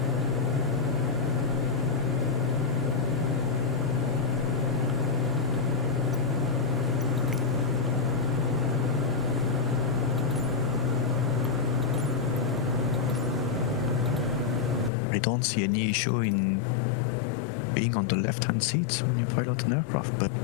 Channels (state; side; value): drops out; right; at 14.9 s